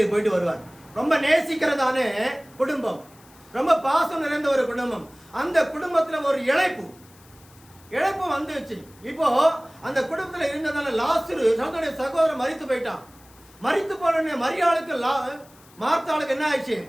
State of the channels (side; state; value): left; noise; hiss, 26 dB below the sound